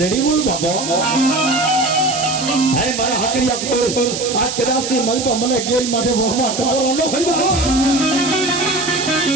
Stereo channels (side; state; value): right; noise; hiss, 5 dB below the sound